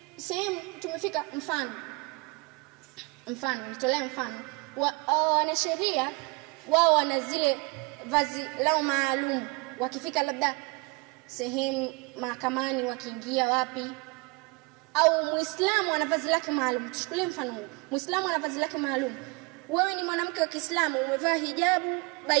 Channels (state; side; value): quieter; left; 28.3 dB